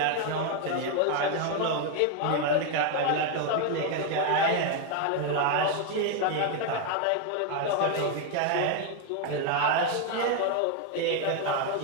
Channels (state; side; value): different; both; correlation 0.01